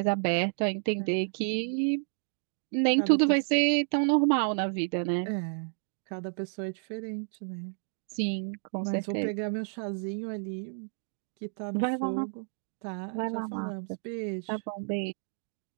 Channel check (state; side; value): silent; left; digital silence